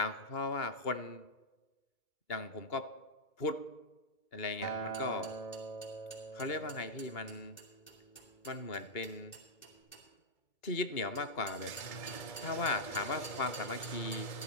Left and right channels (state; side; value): late; right; 2.3 ms